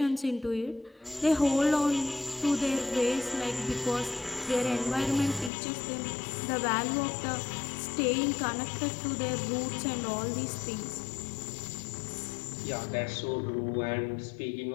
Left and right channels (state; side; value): drops out; right; at 5.5 s